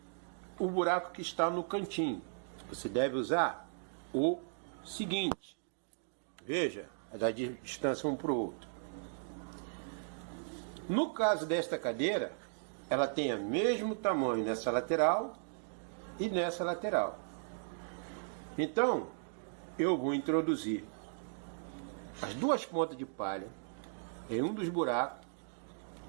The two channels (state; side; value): silent; left; digital silence